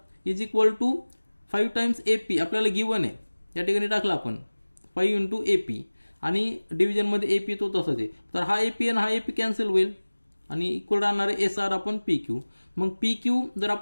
is equal to 5 times AP आपल्याला गिवन आहे, या ठिकाणी टाकला आपण 5 इंटू AP आणि डिव्हिजनमध्ये AP तो तसाच आहे. तर हा AP आणि हा AP कॅन्सल होईल आणि इक्वल राहणार आहे SR अपॉन PQ. मग PQ जर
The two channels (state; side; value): inverted; both; correlation -1.00